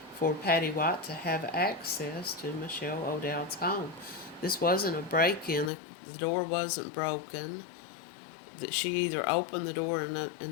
for Patty White to have access to Michelle O'Dowd's home. This wasn't a break-in. The door wasn't broken. That she either opened the door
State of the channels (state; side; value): drops out; right; at 5.7 s